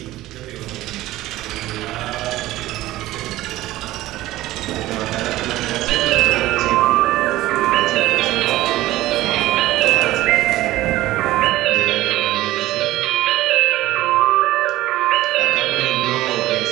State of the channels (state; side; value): quieter; left; 16.3 dB